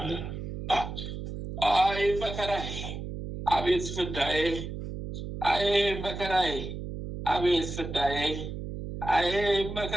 አይ መከራዬ፣ አቤት ፍዳዬ! አይ መከራዬ፣ አቤት ፍዳዬ! አይ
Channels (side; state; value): right; noise; hum, 7 dB below the sound